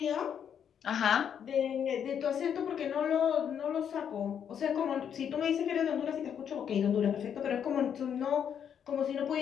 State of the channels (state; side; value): quieter; right; 8.3 dB